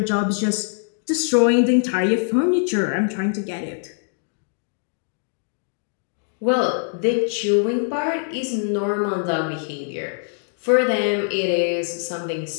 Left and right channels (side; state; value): right; silent; digital silence